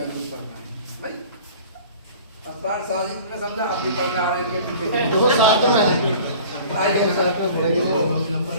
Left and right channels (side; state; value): both; inverted; correlation -0.44